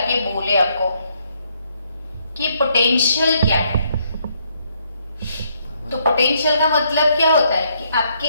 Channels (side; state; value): both; inverted; correlation -0.72